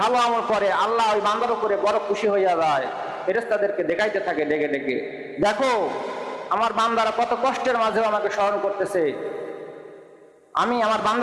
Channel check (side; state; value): both; identical; correlation 1.00